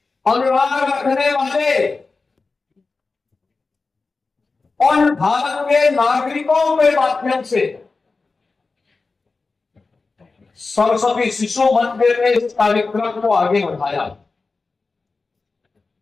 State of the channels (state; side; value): quieter; right; 4.0 dB